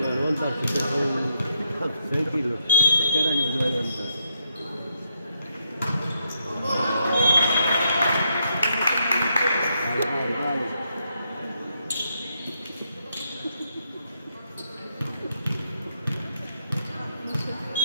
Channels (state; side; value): inverted; both; correlation -0.78